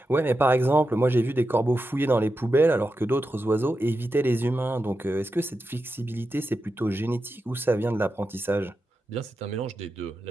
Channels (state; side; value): normal; both; correlation 0.89